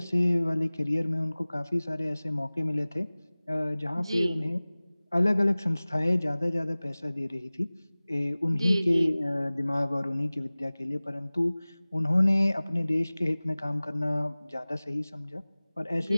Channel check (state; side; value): inverted; both; correlation -0.99